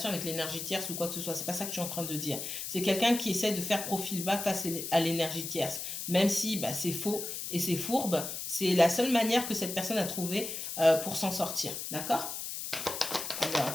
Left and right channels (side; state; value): left; noise; hiss, 5 dB below the sound